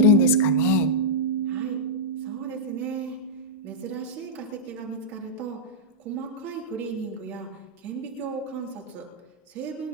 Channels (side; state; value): both; normal; correlation -0.09